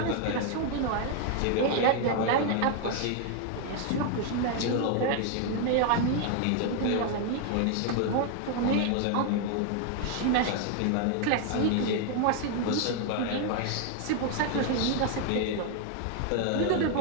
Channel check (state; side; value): different; both; correlation 0.00